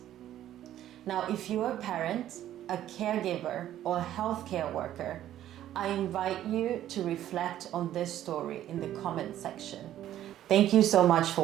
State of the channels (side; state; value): left; quieter; 12.2 dB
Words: Now, if you're a parent, a caregiver, or a healthcare worker, I invite you to reflect on this story in the comment section. Thank you so much